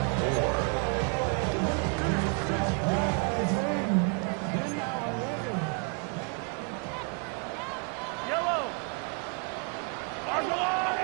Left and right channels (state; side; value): quieter; left; 37.7 dB